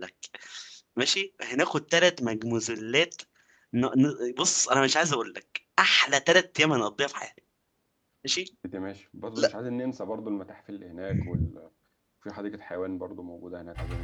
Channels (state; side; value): identical; both; correlation 1.00